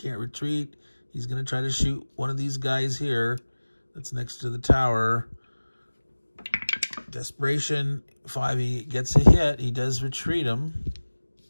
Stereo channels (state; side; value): inverted; both; correlation -1.00